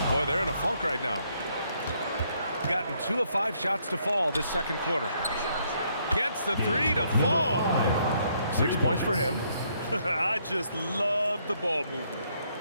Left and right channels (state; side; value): inverted; both; correlation -0.71